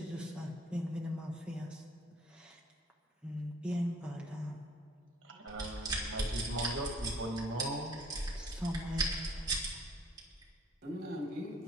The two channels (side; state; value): both; normal; correlation 0.58